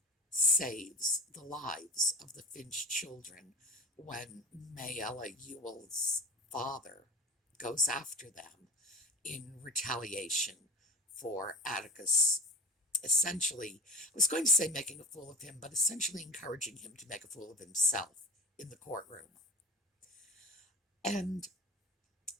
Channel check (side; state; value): both; normal; correlation 0.35